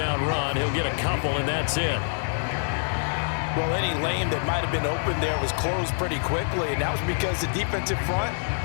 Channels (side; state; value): right; silent; digital silence